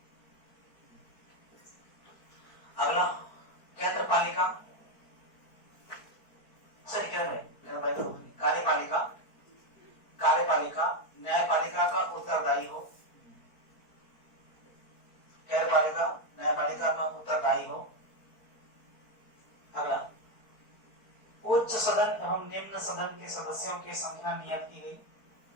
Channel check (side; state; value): right; late; 4.5 ms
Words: अगला, केंद्र पालिका, सही कह रहे हैं, कार्यपालिका, कार्यपालिका न्यायपालिका का उत्तरदायी हो, कार्यपालिका न्यायपालिका का उत्तरदायी हो। अगला, उच्च सदन एवं निम्न सदन के सदस्यों की संख्या नियत की गई,